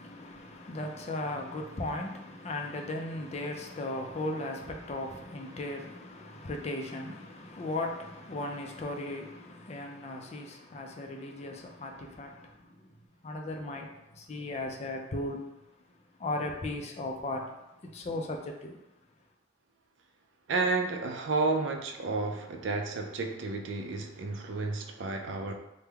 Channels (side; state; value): both; normal; correlation 0.11